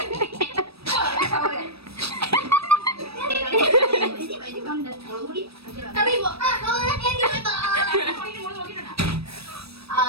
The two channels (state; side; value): late; left; 0.78 ms